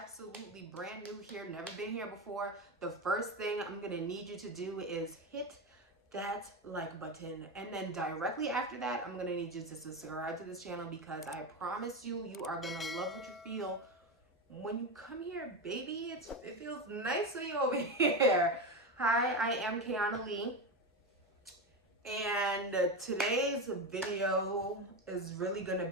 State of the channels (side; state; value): both; normal; correlation 0.17